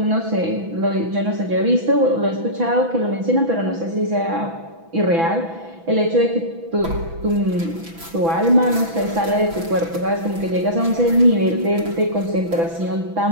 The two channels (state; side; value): late; left; 6.0 ms